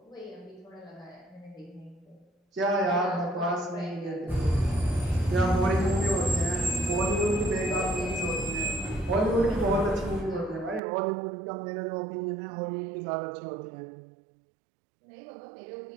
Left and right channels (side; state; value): left; drops out; at 10.8 s